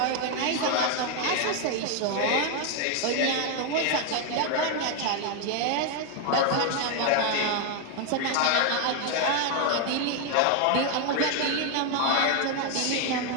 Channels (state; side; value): different; both; correlation 0.01